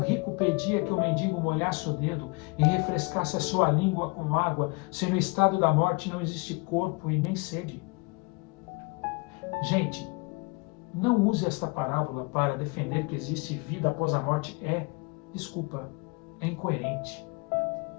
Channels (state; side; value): quieter; right; 29.6 dB